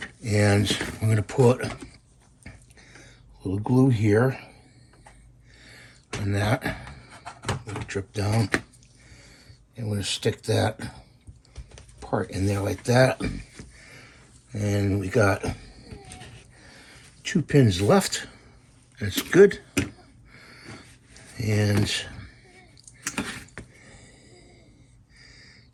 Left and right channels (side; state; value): both; identical; correlation 1.00